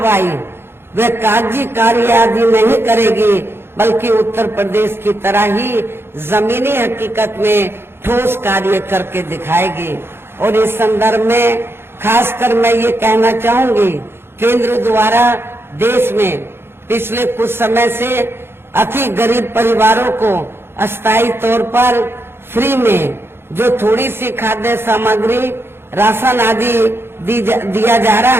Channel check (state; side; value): late; left; 0.11 ms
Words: वे कागजी कार्य आदि नहीं करेगी, बल्कि उत्तर प्रदेश की तरह ही जमीनी हकीकत में ठोस कार्य करके दिखाएगी। और इस संदर्भ में खासकर मैं ये कहना चाहूंगी, केंद्र द्वारा देश में पिछले कुछ समय से अति गरीब परिवारों को अस्थायी तौर पर फ्री में जो थोड़ी सी खाद्य सामग्री, राशन आदि दिया जा रहा